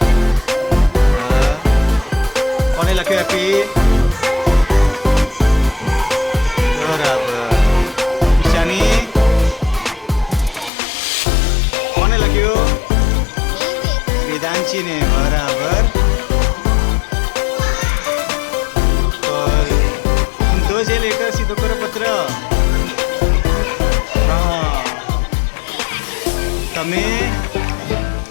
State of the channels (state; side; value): drops out; right; at 10.7 s